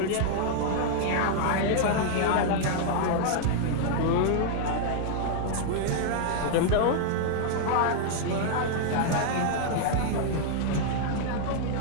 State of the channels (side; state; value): both; different; correlation -0.01